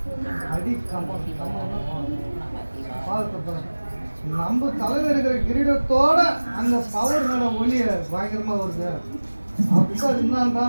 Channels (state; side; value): inverted; both; correlation -1.00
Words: அடி கம்பம் பார்த்து நம்ம தலையில் இருக்கிற கிரீடத்தோட அந்த பவர் மேலே ஒளிய பயங்கரமாக வருது அப்படின்னா அது